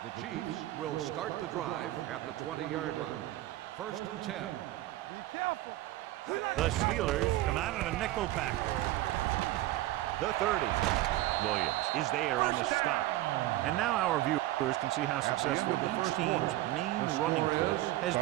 The Chiefs will start the drive at the 20-yard line. 1st and 10. Be careful. The Steelers come out in a nickel package. The 30. Williams is there on the stop. And now our viewers can see how successful each team's main running play has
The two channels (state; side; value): quieter; left; 16.2 dB